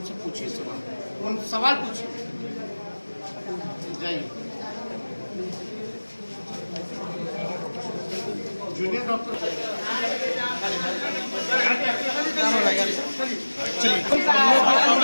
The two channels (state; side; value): inverted; both; correlation -1.00